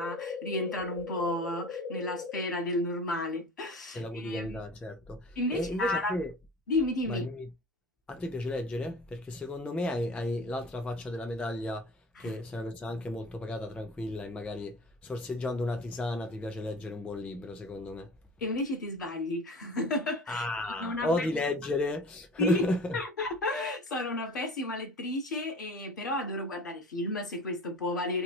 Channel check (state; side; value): normal; both; correlation 0.39